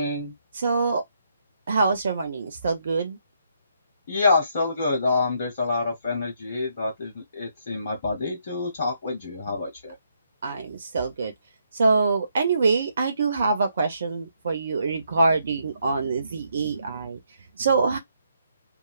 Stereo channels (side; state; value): both; inverted; correlation -0.75